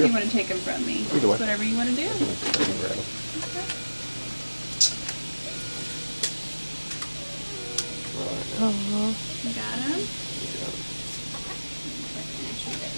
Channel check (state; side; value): inverted; both; correlation -1.00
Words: you want to take him from me? Either way. Whatever you want to do. Okay. Oh, You got him?